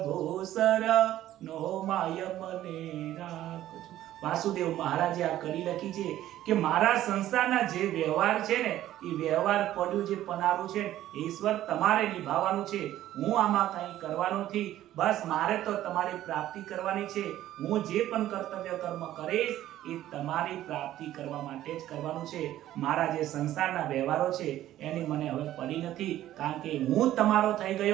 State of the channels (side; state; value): left; quieter; 13.3 dB